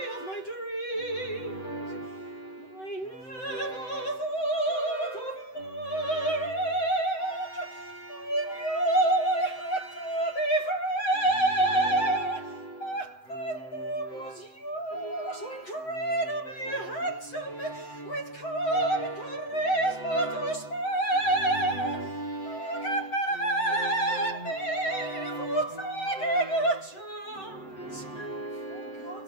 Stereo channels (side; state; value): right; late; 7.8 ms